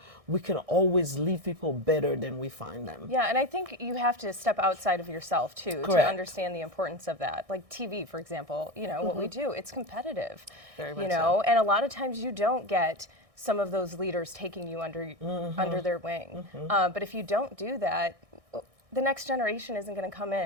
we can always leave people better than we find them. Yeah, and I think you have to step outside of yourself too to understand the importance of that. Like TV, for example, what we do, it's competitive. Very much so. And a lot of times you don't get some of those leaders taking you under their wing. But if you don't do that, the next generation isn't going to come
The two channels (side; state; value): left; late; 1.6 ms